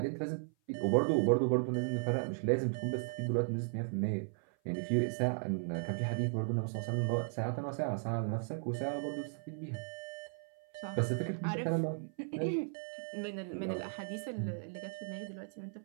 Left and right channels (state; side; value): silent; left; 54 dB below the other